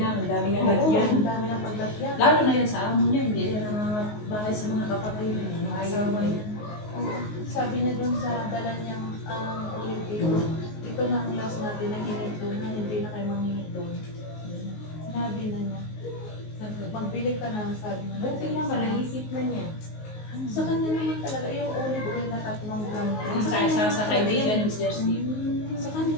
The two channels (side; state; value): right; late; 19 ms